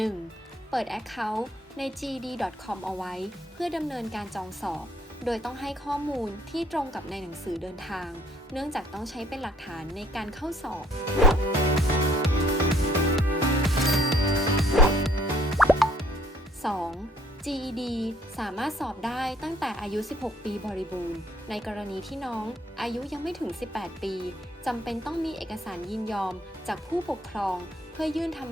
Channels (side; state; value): both; normal; correlation 0.62